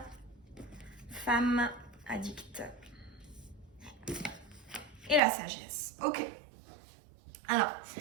Femme addicte. Et la sagesse. Ok. Alors,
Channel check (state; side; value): drops out; left; at 5.2 s